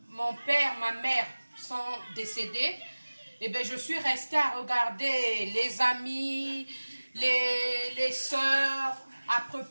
Mon père, ma mère sont décédés. Et bien, je suis restée à regarder les amis, les sœurs, à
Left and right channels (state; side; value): inverted; both; correlation -1.00